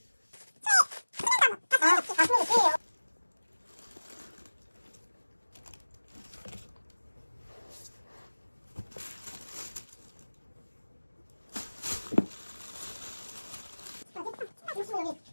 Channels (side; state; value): both; inverted; correlation -1.00